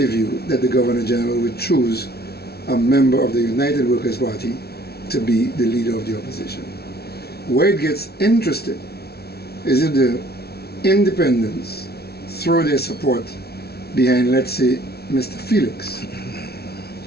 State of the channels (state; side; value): late; right; 0.46 ms